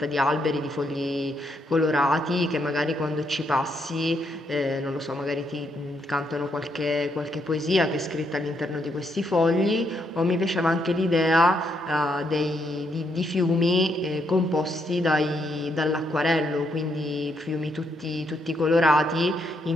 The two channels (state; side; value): normal; both; correlation 0.76